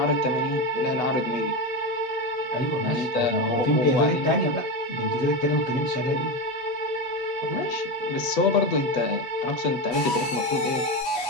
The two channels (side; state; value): right; late; 8.1 ms